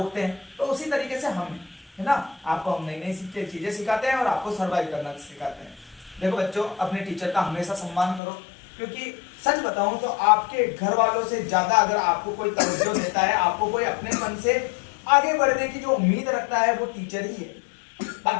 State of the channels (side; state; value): right; drops out; at 8.2 s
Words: हैं। तो उसी तरीके से हम है ना। आपको हम नई नई चीजें सिखाते हैं और आपको सर्वाइव करना सिखाते हैं। देखो बच्चों, अपने टीचर का हमेशा सम्मान करो, क्योंकि सच बताऊं तो आपके घर वालों से ज्यादा अगर आपको कोई तवज्जो देता है, आपको कोई अपने मन से आगे बढ़ने की जो उम्मीद रखता है, वो टीचर ही है।